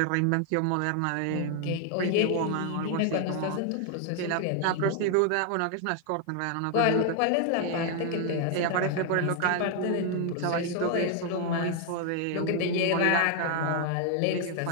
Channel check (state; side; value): different; both; correlation 0.00